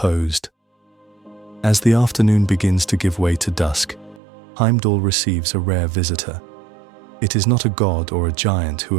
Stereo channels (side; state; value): left; drops out; at 4.2 s